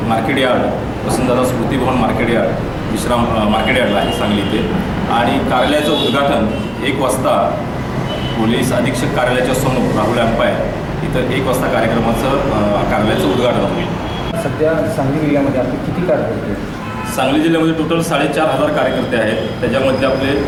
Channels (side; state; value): both; identical; correlation 1.00